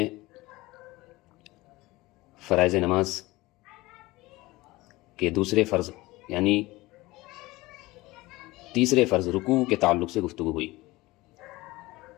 فرائض نماز کے دوسرے فرض یعنی تیسرے فرض رکوع کے تعلق سے گفتگو ہوئی۔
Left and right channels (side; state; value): right; quieter; 20.3 dB